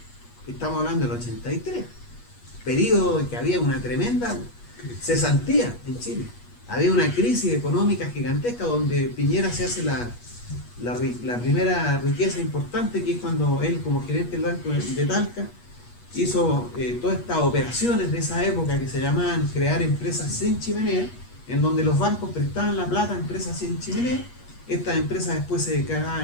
estamos hablando del 83, periodo en que había una tremenda cesantía en Chile. Había una crisis económica gigantesca donde Piñera se hace la primera riqueza importante, que es cuando él, como gerente del Banco de Talca, hizo todas estas operaciones de esa época que se llamaban crear empresas sin chimenea, en donde los bancos prestaban la plata a empresas sin chimenea. Estas empresas después se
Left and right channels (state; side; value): late; right; 8.3 ms